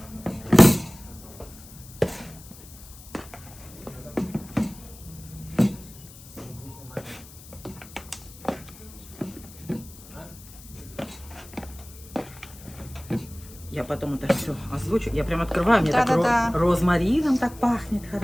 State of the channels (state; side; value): noise; left; hiss, 19 dB below the sound